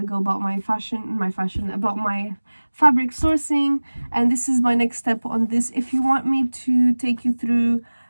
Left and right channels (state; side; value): inverted; both; correlation -1.00